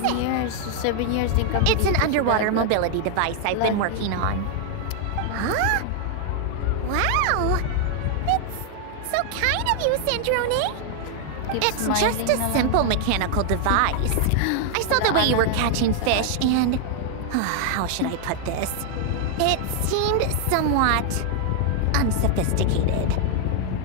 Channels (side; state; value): both; different; correlation 0.00